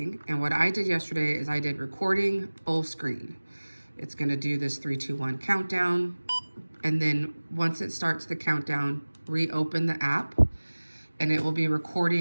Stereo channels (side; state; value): both; inverted; correlation -1.00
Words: And what I did yesterday is I did recording full screen. It's gonna do this 3, 2, 1 countdown. And then once it starts the countdown, reopen the app and it will be